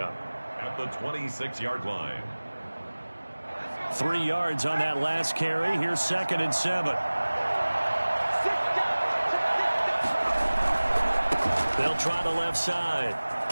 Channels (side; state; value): both; inverted; correlation -1.00